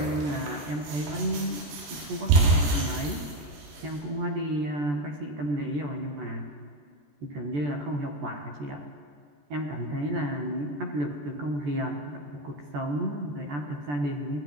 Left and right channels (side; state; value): left; late; 14 ms